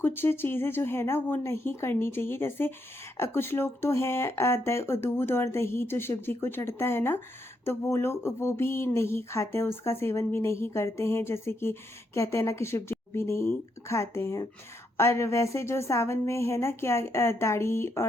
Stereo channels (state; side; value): normal; both; correlation 0.79